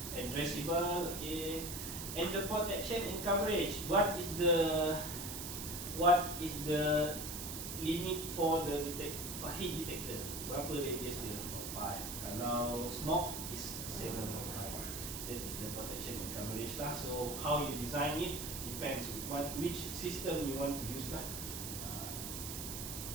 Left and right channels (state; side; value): noise; right; hiss, 6 dB below the sound